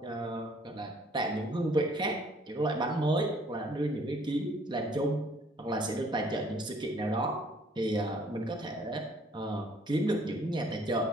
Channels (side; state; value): both; normal; correlation 0.60